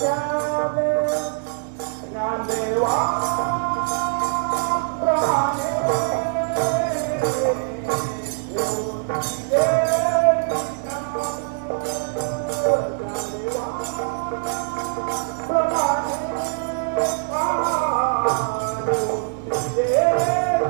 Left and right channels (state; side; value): silent; left; 63 dB below the other